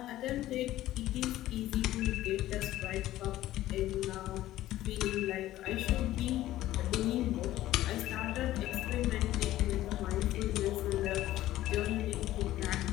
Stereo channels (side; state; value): right; quieter; 14.7 dB